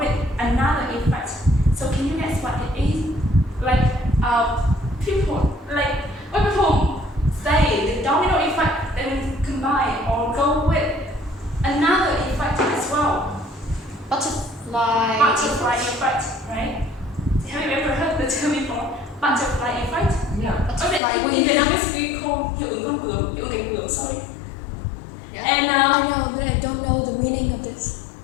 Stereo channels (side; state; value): right; drops out; at 21.0 s